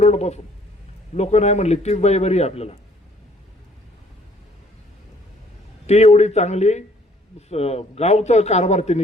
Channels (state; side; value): normal; both; correlation 0.61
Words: पासून. लोक नाही म्हणली तीच बाई बरी आहे आपल्याला. ती एवढी चांगली गावचा कारभार तिने